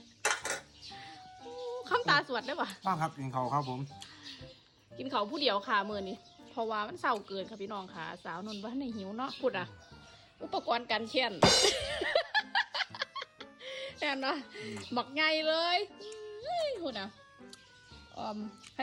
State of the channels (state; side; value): identical; both; correlation 1.00